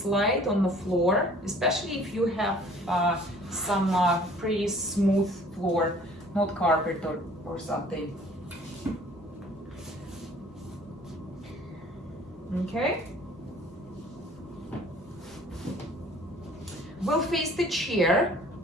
on the floor, especially if you have some pretty smooth floor, not carpet or something. Okay. We'll face the chair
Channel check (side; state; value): both; normal; correlation 0.53